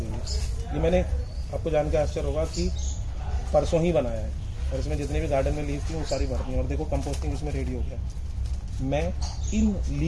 है। ये मैंने आपको जान के आश्चर्य होगा कि परसों ही बनाया है, और इसमें जितने भी गार्डन में लीव्स थी वो सारी भर दी हैं। और देखो कंपोस्टिंग इसमें रेडी हो गया। मैं इन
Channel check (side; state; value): both; identical; correlation 1.00